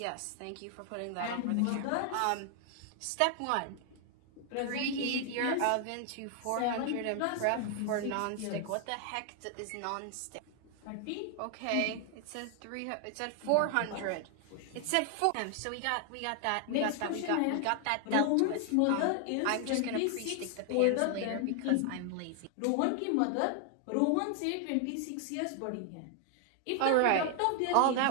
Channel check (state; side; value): different; both; correlation 0.00